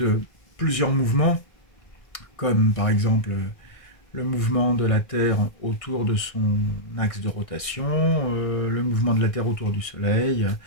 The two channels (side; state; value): right; late; 1.6 ms